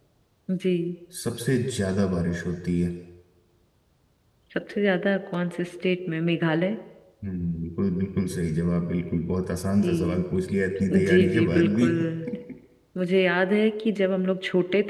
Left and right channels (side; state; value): both; identical; correlation 1.00